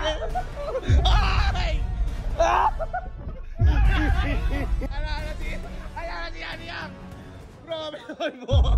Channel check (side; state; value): both; identical; correlation 1.00